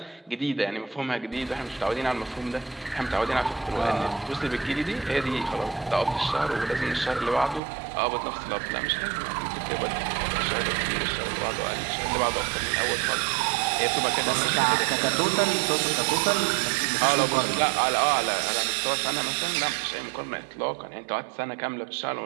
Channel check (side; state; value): left; drops out; at 7.6 s